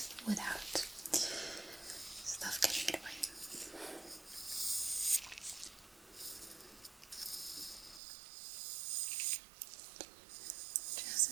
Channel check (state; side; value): drops out; left; at 8.0 s